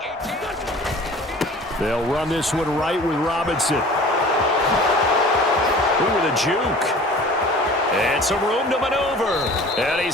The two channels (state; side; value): normal; both; correlation 0.45